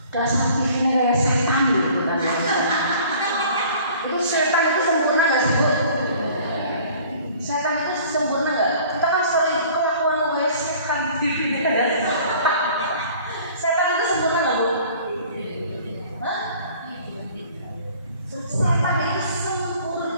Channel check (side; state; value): both; inverted; correlation -0.50